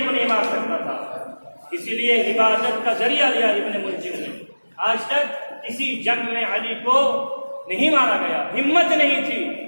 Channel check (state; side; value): inverted; both; correlation -1.00